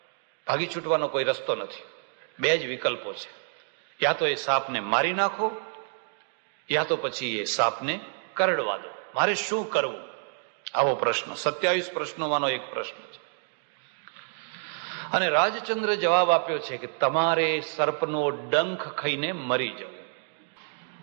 ભાગી છૂટવાનો કોઈ રસ્તો નથી. 2 જ વિકલ્પો છે. યા તો એ સાપને મારી નાખો, યા તો પછી એ સાપને કરડવા દો. મારે શું કરવું? આવો પ્રશ્ન 27 પ્રશ્નોમાંનો એક પ્રશ્ન છે. અને રાજચંદ્ર જવાબ આપ્યો છે કે તમારે સર્પનો ડંખ ખાઈને મરી જવું,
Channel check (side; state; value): left; silent; digital silence